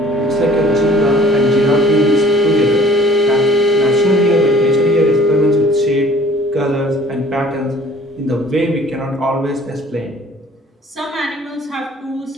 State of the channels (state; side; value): normal; both; correlation 0.52